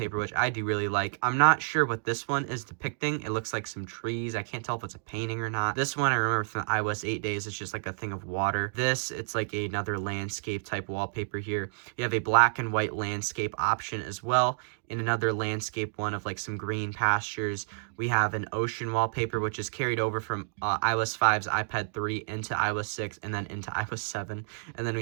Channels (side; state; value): left; silent; digital silence